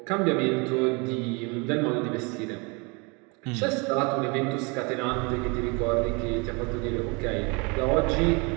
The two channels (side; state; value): left; quieter; 30.0 dB